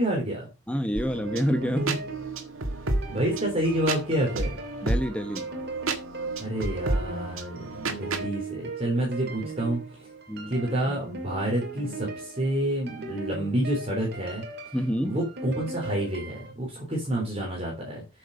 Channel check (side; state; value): both; normal; correlation 0.58